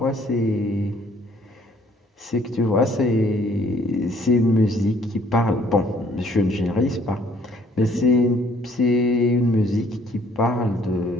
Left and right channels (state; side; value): normal; both; correlation 0.61